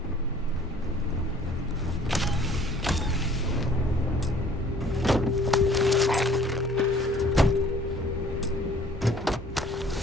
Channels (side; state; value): both; normal; correlation 0.54